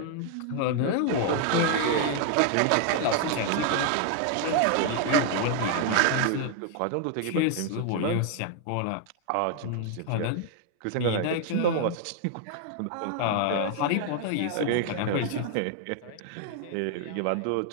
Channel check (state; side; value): different; both; correlation 0.00